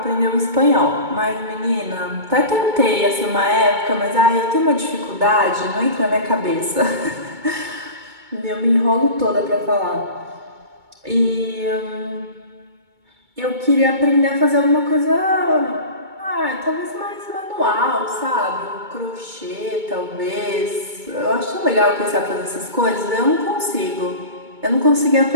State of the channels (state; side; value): late; left; 2.2 ms